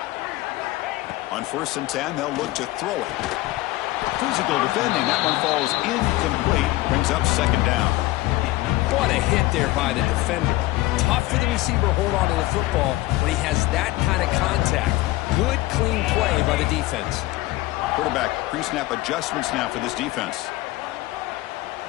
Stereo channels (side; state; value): right; quieter; 18.4 dB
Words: On 1st and 10, they'll look to throw it. Physical defending. That one falls incomplete. Brings up 2nd down. What a hit there by the defender. Tough for the receiver to hold on to the football when he has that kind of contact. Good, clean play by the defense. Quarterback pre-snap adjustments now for this defense.